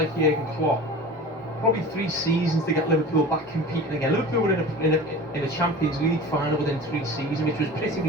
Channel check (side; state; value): both; normal; correlation 0.37